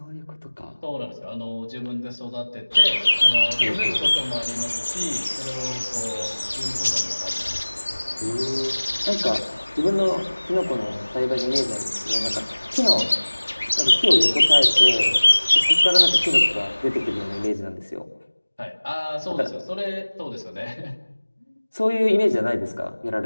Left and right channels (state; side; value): inverted; both; correlation -1.00